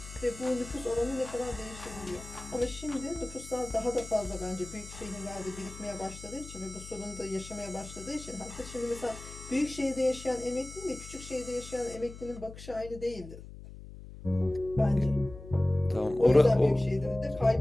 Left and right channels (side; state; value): left; noise; hum, 14 dB below the sound